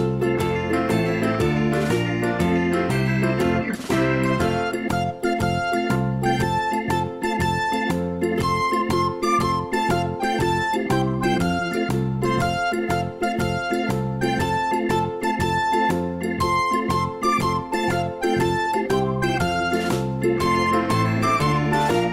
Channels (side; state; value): both; identical; correlation 1.00